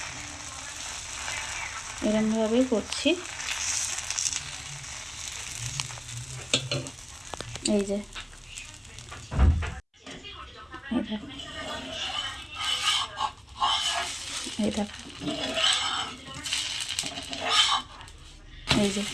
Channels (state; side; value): identical; both; correlation 1.00